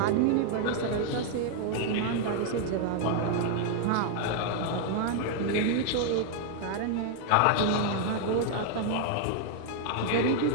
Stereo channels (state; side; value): different; both; correlation 0.00